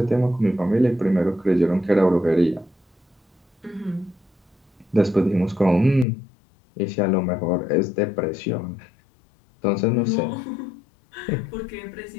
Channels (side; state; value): right; drops out; at 6.1 s